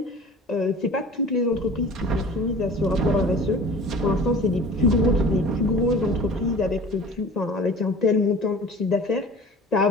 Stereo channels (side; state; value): both; normal; correlation 0.42